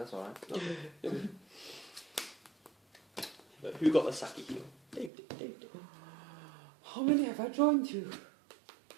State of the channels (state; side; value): drops out; left; at 5.1 s